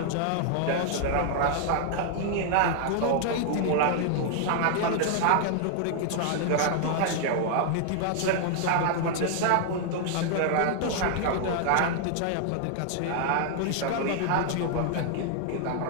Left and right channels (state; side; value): different; both; correlation 0.00